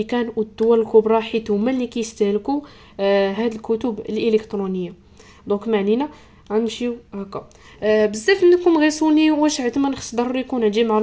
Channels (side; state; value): both; identical; correlation 1.00